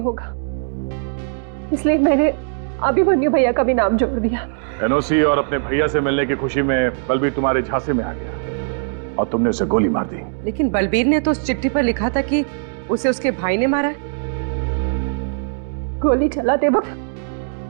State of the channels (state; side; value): silent; left; digital silence